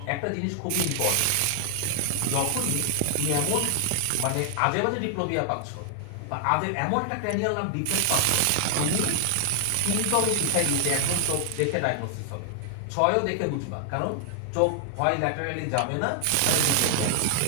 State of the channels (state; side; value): different; both; correlation 0.00